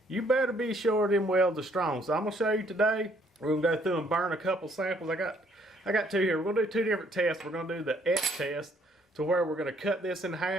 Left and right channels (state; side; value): normal; both; correlation 0.65